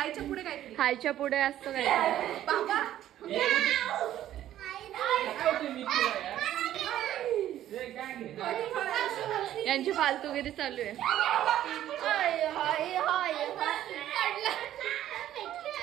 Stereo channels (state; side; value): quieter; left; 12.4 dB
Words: पुढे काय? हायच्या पुढे असतं काय? बाबा यांची फालतूगिरी चालू आहे.